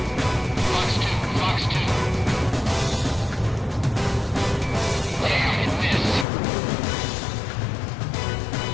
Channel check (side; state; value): right; drops out; at 6.2 s